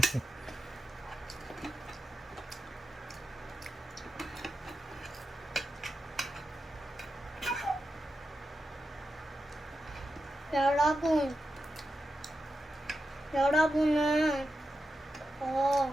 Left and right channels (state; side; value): normal; both; correlation 0.89